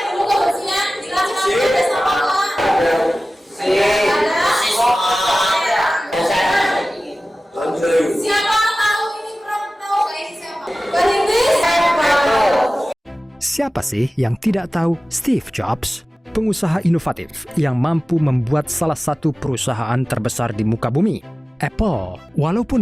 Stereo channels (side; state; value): both; normal; correlation 0.96